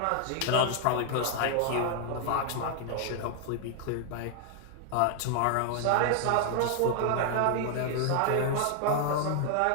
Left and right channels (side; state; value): both; different; correlation 0.00